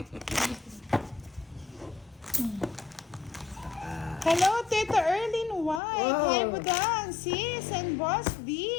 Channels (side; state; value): right; drops out; at 5.8 s